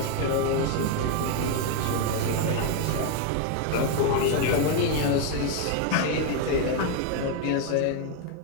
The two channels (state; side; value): different; both; correlation 0.01